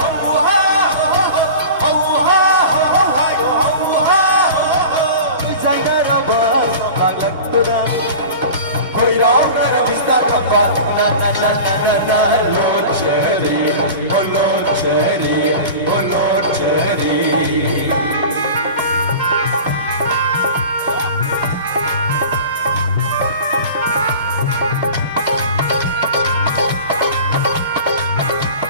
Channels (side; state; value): both; inverted; correlation -0.37